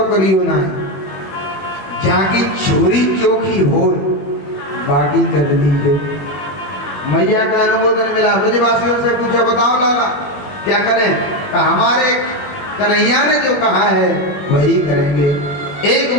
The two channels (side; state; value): right; late; 20 ms